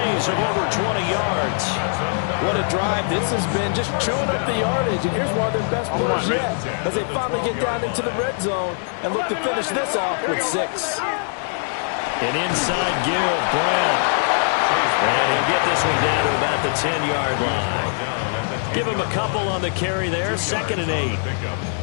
of over 20 yards. What a drive. This has been just chewing up the yardage, and here's one of their best plays yet as they finally get down into the red zone and look to finish this off with 6. An inside give, Brown. And he'll get this one down to about the 10-yard line. Give him a couple on the carry there, 2nd and 8.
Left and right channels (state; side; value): silent; right; 61 dB below the other